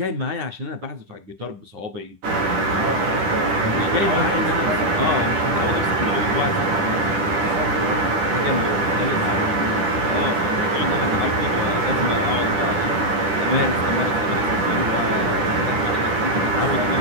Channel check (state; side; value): late; left; 9.9 ms